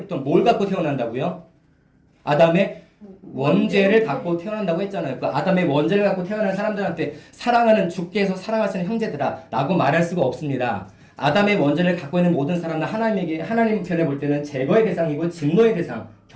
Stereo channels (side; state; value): both; identical; correlation 1.00